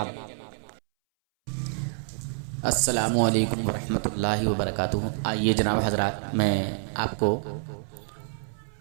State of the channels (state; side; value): silent; left; 60 dB below the other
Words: अस्सलामु अलैकुम वरहमतुल्लाहि वबरकातुहू। आइए जनाब हज़रात, मैं आपको